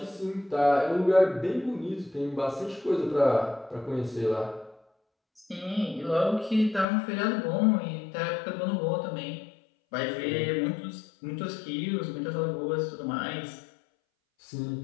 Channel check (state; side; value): drops out; right; at 6.9 s